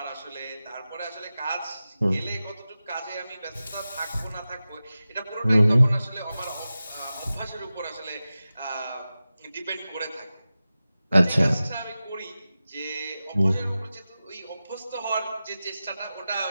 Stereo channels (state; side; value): inverted; both; correlation -0.95